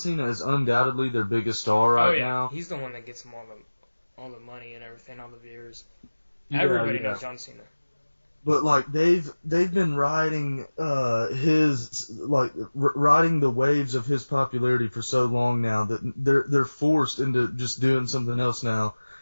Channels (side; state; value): both; inverted; correlation -1.00